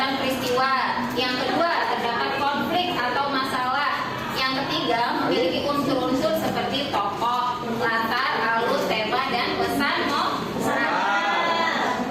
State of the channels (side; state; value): both; identical; correlation 1.00